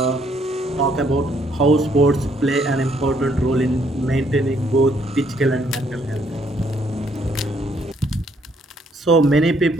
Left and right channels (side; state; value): both; normal; correlation 0.68